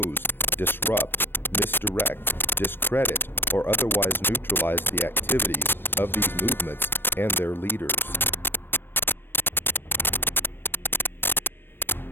disrupt, misdirect, discredit, or otherwise neutralize the activities of these movements and their leaders.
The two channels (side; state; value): right; late; 0.098 ms